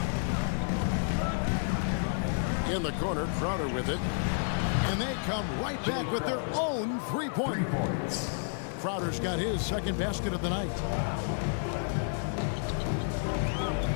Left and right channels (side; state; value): right; silent; 57 dB below the other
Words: In the corner, Crowder with it. And they come right back with their own 3-point. Crowder's got his second basket of the night.